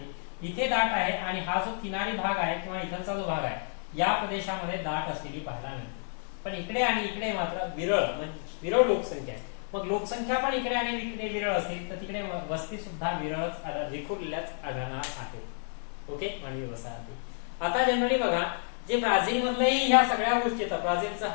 इथे दाट आहे आणि हा जो किनारी भाग आहे किंवा इथलचा जो भाग आहे या प्रदेशामध्ये दाट असलेली पाहायला मिळते. पण इकडे आणि इकडे मात्र विरळ लोकसंख्या आहे. मग लोकसंख्या पण इकडे आणि इकडे विरळ असेल तर तिकडे वस्ती सुद्धा विरळच विखुरलेल्याच आढळणार आहेत. ओके, मानवी वसाहती. आता जनरली बघा जे ब्राझील मधलंही ह्या सगळ्या गोष्टी येतात. ब्राझीलचं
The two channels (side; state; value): right; silent; 58 dB below the other